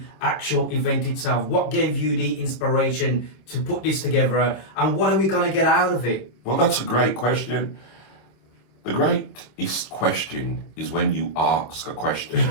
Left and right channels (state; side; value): late; right; 26 ms